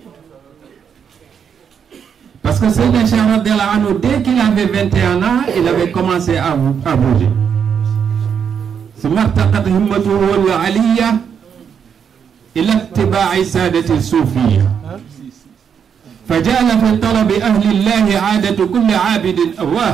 Parce que Sidi Cheikh radiyallahu anhu, dès qu'il avait 21 ans, il avait commencé à bouger. ثم ارتقت همته العلية إلى اتباع سادة الصوفية فجعل في طلب أهل الله عادة كل عابد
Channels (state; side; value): quieter; left; 7.4 dB